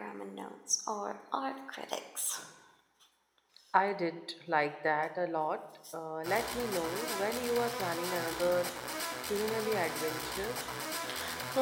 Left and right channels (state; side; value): identical; both; correlation 1.00